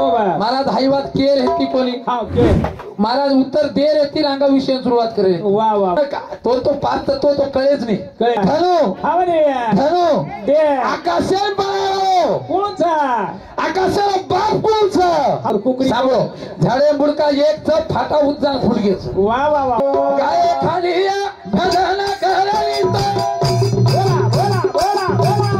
महाराज हाईवात केर हेती कोणी हा के महाराज उत्तर देर येतील अंगा विषय सुरुवात करेल वा वा तो पाच तत्व तो कळेच नाही कळे धनु हा म्हणे धनु दे आकाशेल बाळो कोणचा आकाशाला बाप कोणचा हा कुकरी सांगो झाडे बुडका एक च फाटा उज्जा फुडगेच वा वा वा गाय खाली भजन करायचं बोला बोला बोला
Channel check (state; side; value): identical; both; correlation 1.00